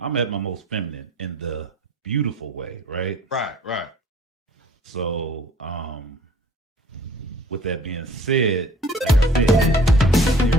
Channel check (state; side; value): normal; both; correlation 0.51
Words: at my most feminine in the beautiful way, right? Right. So, with that being said, like I